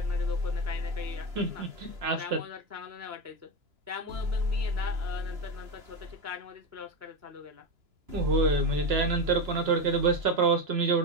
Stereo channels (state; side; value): late; left; 2.9 ms